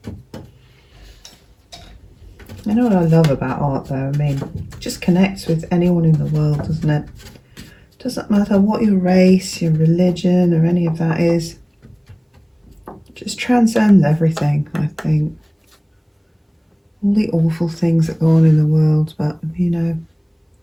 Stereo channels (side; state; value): both; identical; correlation 1.00